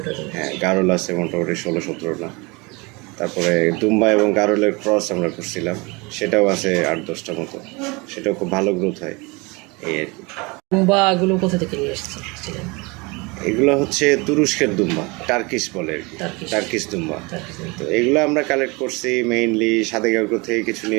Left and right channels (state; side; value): quieter; left; 26.8 dB